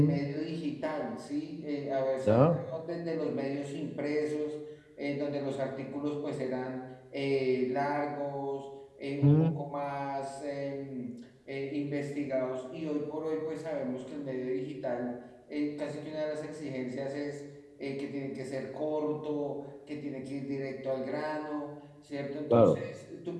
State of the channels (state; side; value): identical; both; correlation 1.00